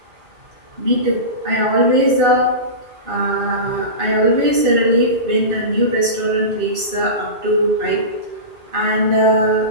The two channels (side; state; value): left; late; 2.5 ms